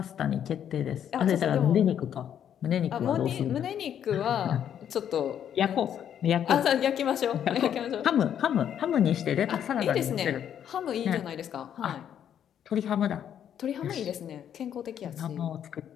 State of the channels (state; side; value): quieter; right; 9.4 dB